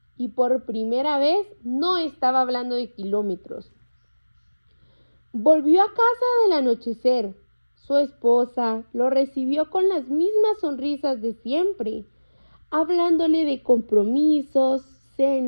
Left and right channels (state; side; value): inverted; both; correlation -1.00